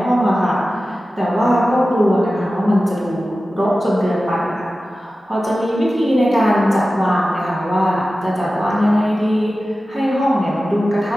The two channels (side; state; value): both; normal; correlation 0.95